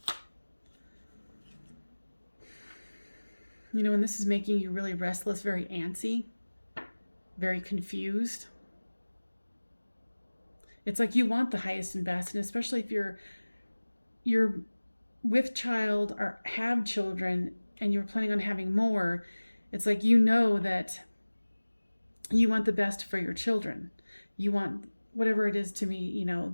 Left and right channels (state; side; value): inverted; both; correlation -1.00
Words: You know, and this is making you really restless, very antsy, very confused. It's like you want the highest and best, and especially if you're with child or have children and you're planning on having more, it's like you know that you want the best for your children. You want whatever it is to be, you know,